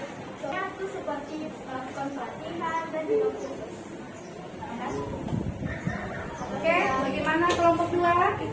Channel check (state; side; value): identical; both; correlation 1.00